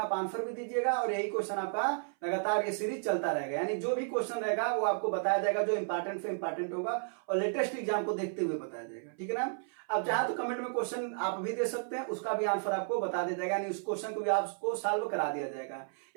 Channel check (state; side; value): silent; left; 56 dB below the other